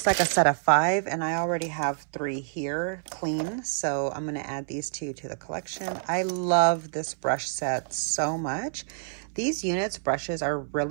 like a set of 5, and I already have 3 here clean. So I'm going to add these 2 to the collection. I love this brush set so much. These units brushes are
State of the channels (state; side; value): silent; left; 60 dB below the other